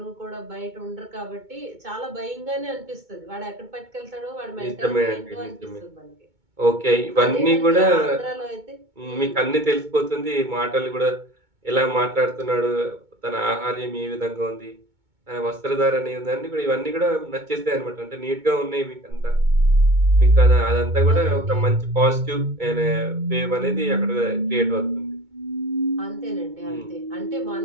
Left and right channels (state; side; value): late; left; 2.2 ms